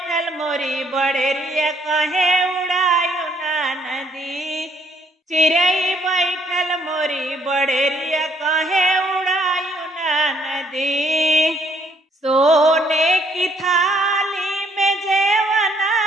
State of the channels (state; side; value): normal; both; correlation 0.67